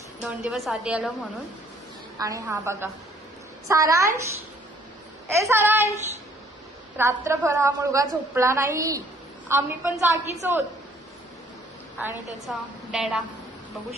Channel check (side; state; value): both; normal; correlation 0.61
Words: 2 दिवस आधी आलो म्हणून. आणि हा बघा सारांश, ए सारांश, रात्रभर हा मुलगा झोपला नाही. आम्ही पण जागीच होत. आणि त्याचा डॅडा बघू